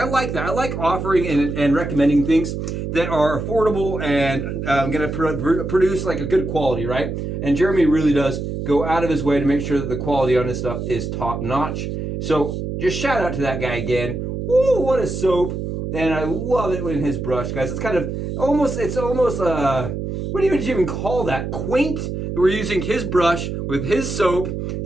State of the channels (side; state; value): right; noise; hum, 4 dB below the sound